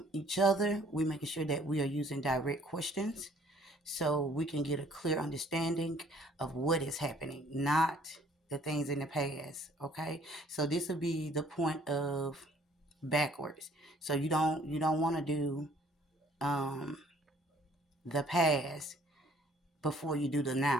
each other, we're making sure that we are using direct questions so we can get a clear understanding of what is happening, not the things in the past. Okay? So this will be the point of backwards. So you don't want to do um, the past before you do the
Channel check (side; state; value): both; normal; correlation 0.58